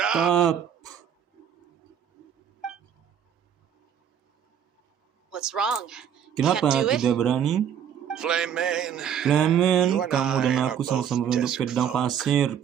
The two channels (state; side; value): quieter; left; 8.7 dB